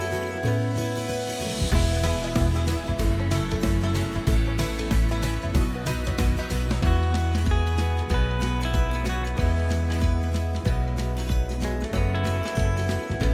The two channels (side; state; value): both; identical; correlation 1.00